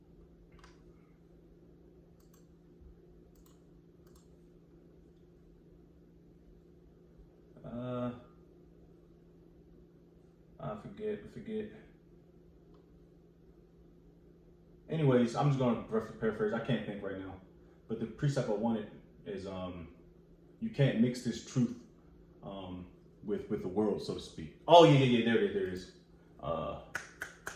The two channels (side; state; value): both; identical; correlation 1.00